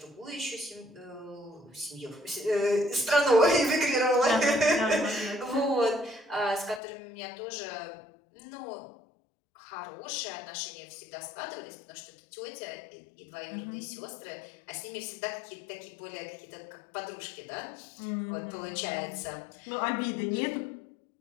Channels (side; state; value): right; drops out; at 6.8 s